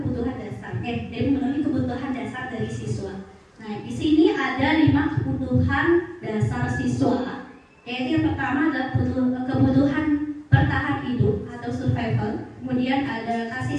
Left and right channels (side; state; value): both; identical; correlation 1.00